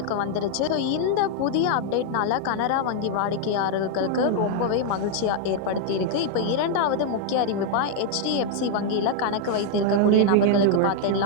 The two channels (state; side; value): different; both; correlation 0.00